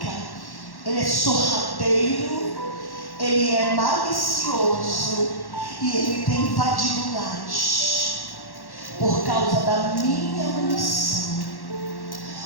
ele é sorrateiro, ele é malicioso, e ele tem invadido lares por causa da minha omissão,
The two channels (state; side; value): late; right; 1.1 ms